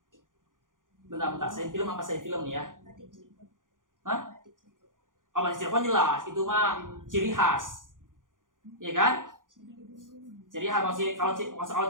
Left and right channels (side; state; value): left; late; 0.89 ms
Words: Bentar. Saya film apa saya film nih ya? Hah? Oh, Batik Cirebon jelas. Itu mah ciri khas. Iya kan? Ciri khas. Kalau